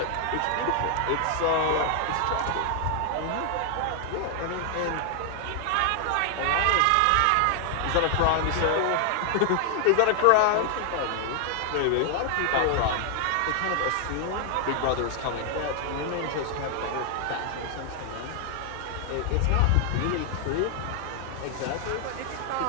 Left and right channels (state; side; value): different; both; correlation 0.00